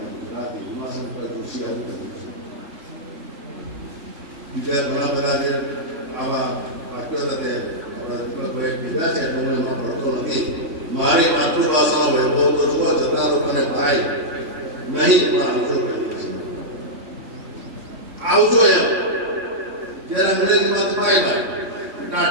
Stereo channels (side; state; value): left; late; 3.0 ms